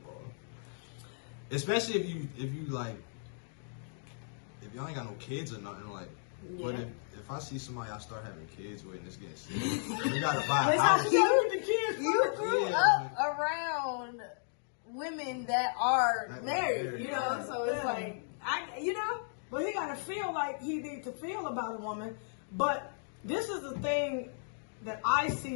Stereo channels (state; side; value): silent; right; digital silence